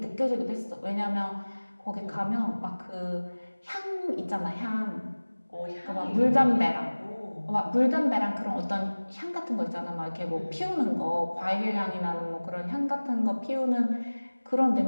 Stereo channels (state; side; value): inverted; both; correlation -1.00